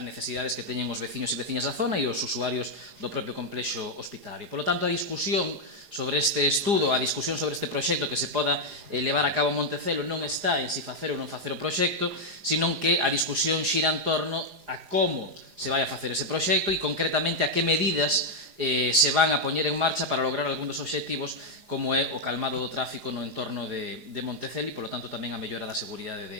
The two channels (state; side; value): late; left; 4.9 ms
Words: necesidades que teñen os veciños e veciñas da zona e os usuarios do propio complexo hospitalario. Por lo tanto, a discusión sobre este estudo, a discusión sobre este proxecto que se poda levar a cabo en Montecelo non está en si facer ou non facer o proxecto, sino que a discusión xira en torno a como se vai a facer ese proxecto e concretamente a que medidas se van a poñer en marcha para lograr algún dos obxectivos como é o calmado do tráfico no entorno de Montecelo e, polo tanto, tamén a mellora da seguridade